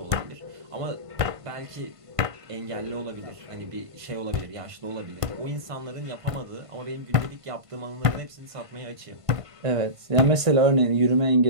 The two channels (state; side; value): late; left; 1.5 ms